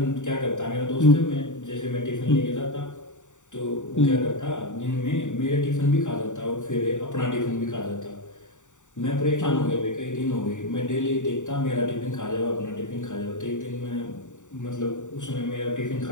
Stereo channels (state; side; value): late; right; 0.86 ms